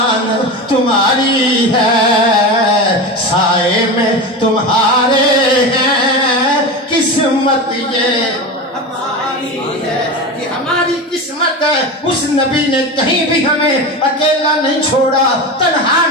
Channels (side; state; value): both; normal; correlation 0.25